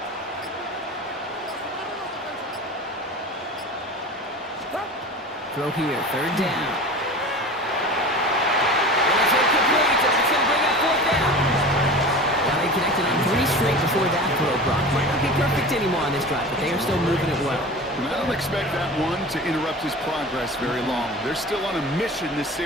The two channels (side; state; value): both; normal; correlation 0.35